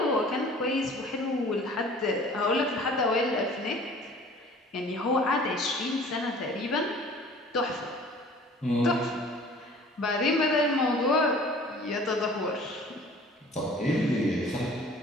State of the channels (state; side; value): normal; both; correlation 0.48